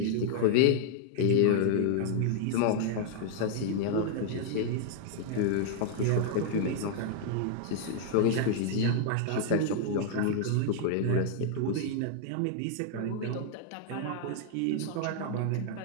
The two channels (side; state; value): both; different; correlation -0.01